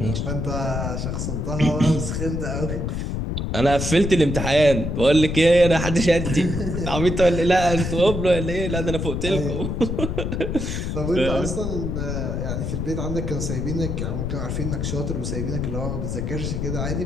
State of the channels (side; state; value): left; noise; rumble, 2 dB below the sound